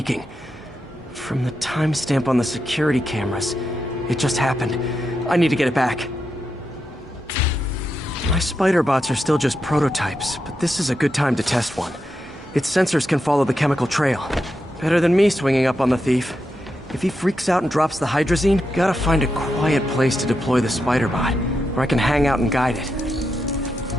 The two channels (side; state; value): both; normal; correlation 0.86